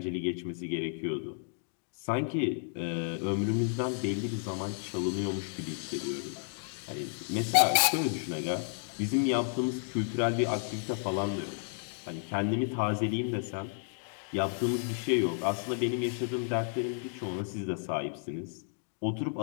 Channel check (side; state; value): right; silent; digital silence